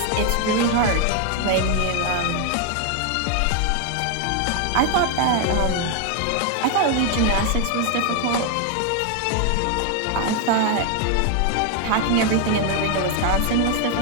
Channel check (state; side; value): different; both; correlation 0.01